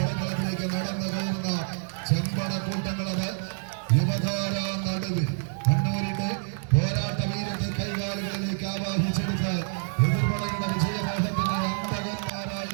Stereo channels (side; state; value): left; silent; digital silence